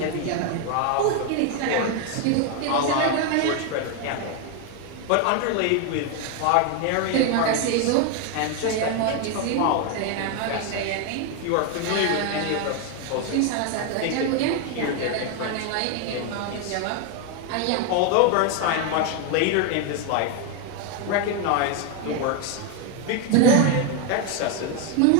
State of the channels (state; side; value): different; both; correlation 0.01